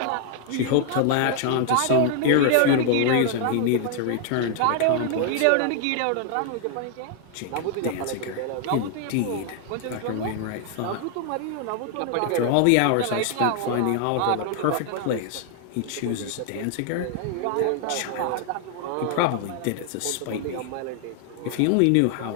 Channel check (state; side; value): different; both; correlation 0.00